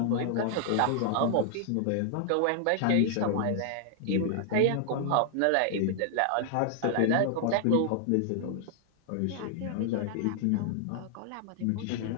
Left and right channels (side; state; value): both; different; correlation 0.00